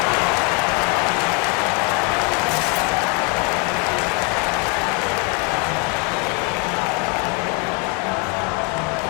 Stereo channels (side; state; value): right; quieter; 27.9 dB